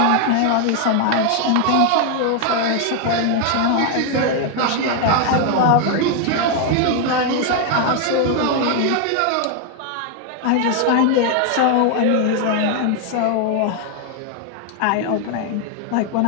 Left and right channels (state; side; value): different; both; correlation 0.00